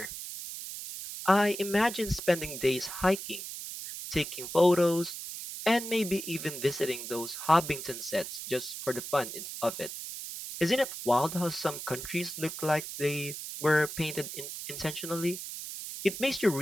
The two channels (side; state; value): right; noise; hiss, 8 dB below the sound